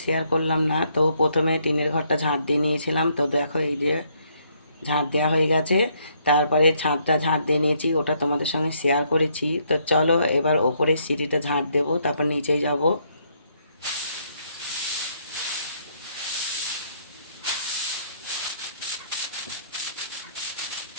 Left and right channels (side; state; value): both; inverted; correlation -0.70